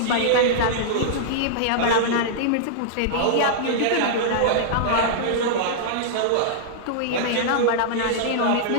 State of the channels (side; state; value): both; different; correlation -0.02